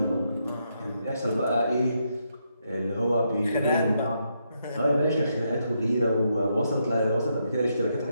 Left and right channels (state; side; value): inverted; both; correlation -0.79